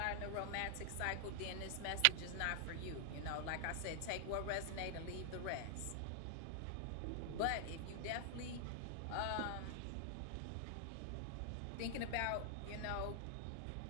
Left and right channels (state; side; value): different; both; correlation 0.00